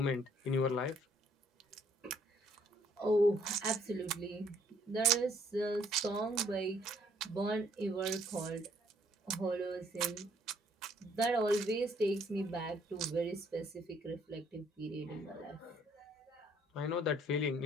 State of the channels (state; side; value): normal; both; correlation 0.64